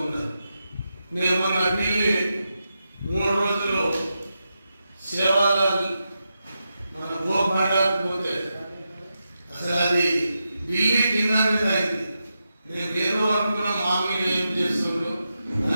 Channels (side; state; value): both; inverted; correlation -0.88